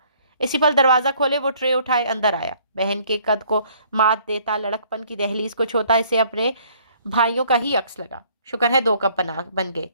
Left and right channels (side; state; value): both; inverted; correlation -0.60